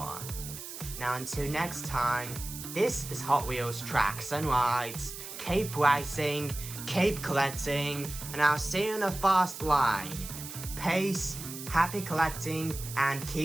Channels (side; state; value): right; noise; hiss, 10 dB below the sound